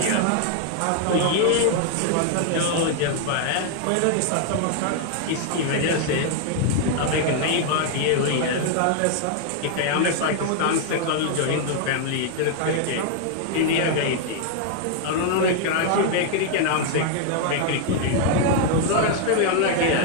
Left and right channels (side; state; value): both; different; correlation 0.00